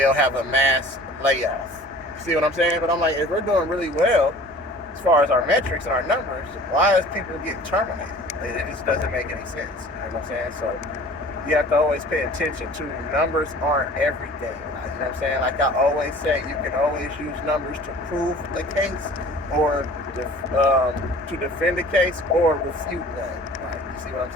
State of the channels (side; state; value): both; normal; correlation 0.46